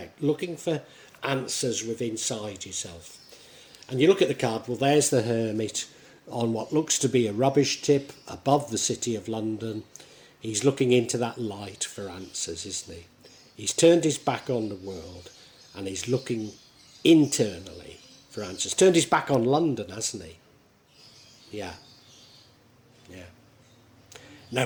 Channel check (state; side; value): identical; both; correlation 1.00